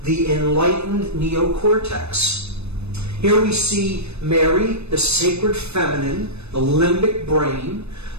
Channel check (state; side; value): late; left; 0.80 ms